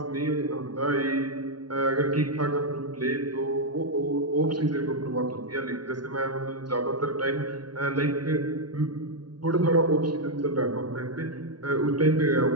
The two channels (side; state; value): left; late; 0.70 ms